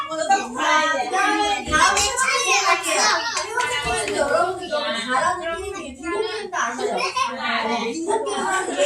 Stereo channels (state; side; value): identical; both; correlation 1.00